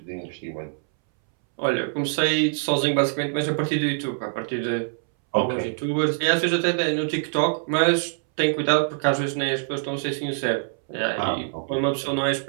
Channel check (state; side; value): silent; left; 62 dB below the other